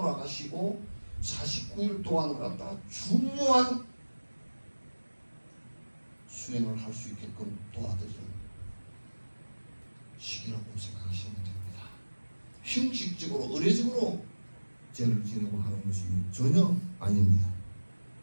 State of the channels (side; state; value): both; inverted; correlation -1.00